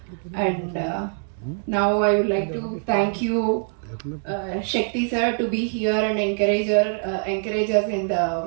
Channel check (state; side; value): silent; left; 57 dB below the other